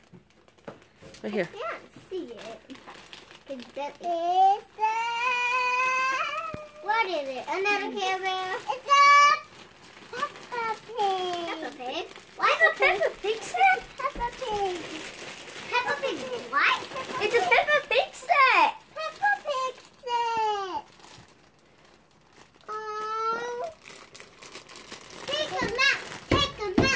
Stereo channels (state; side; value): identical; both; correlation 1.00